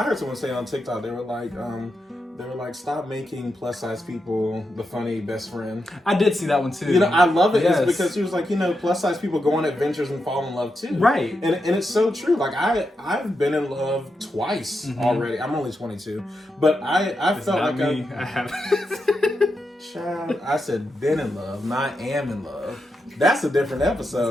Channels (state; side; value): normal; both; correlation 0.86